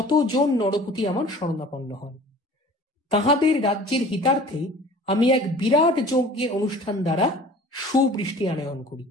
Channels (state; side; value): normal; both; correlation 0.45